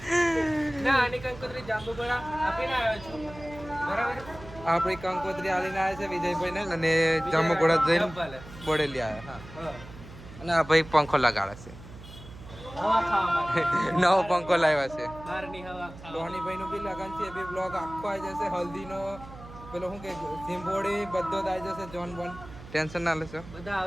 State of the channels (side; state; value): right; noise; hum, 16 dB below the sound